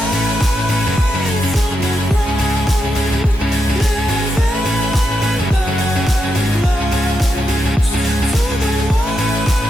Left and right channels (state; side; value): normal; both; correlation 0.84